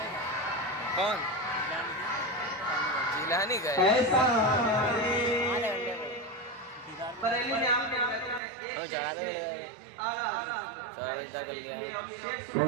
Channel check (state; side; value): drops out; left; at 8.4 s